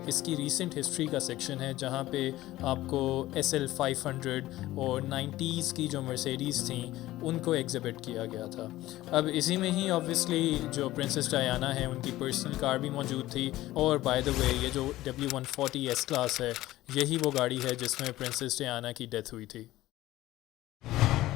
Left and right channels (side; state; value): right; quieter; 16.3 dB